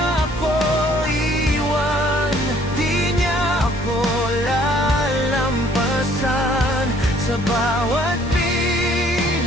ako iwan, di niya ako lalampasan. Sa bawat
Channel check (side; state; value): both; normal; correlation 0.60